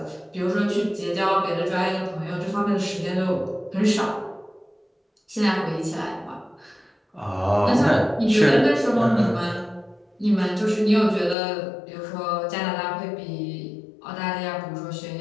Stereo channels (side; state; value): right; drops out; at 11.4 s